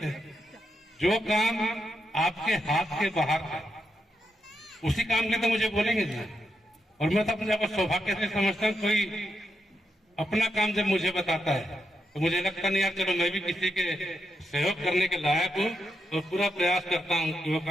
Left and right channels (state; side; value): normal; both; correlation 0.83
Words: हैं। जो काम आपके हाथ के बाहर है उसी काम के तो मुझे बोलेंगे ना। और मैं तो अपने आप को सौभाग्य से समझता हूँ, कोई अपना काम जब मुझे बताता है तो मुझे लगता नहीं यार चलो मैं भी किसी के सहयोग करने के लायक हूँ, और पूरा प्रयास करता हूँ कि वो